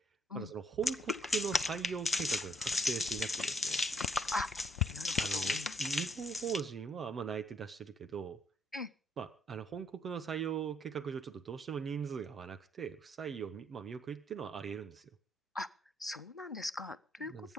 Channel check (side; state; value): both; normal; correlation 0.69